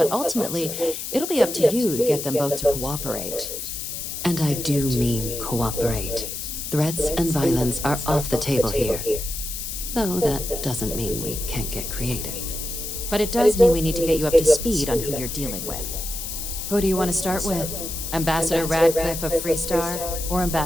ultimately, it'll be up to you to get them both to cooperate. And I do mean cooperate. Threats and violence are off the table here. Though that doesn't mean we can't get creative. But it does mean we need to get you up to speed on who you're dealing with. Who do you want to start with? Ambassador Radcliffe of Freestar, or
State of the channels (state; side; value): noise; left; hiss, 6 dB below the sound